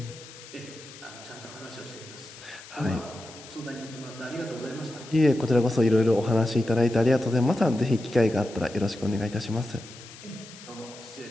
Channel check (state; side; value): noise; left; hiss, 17 dB below the sound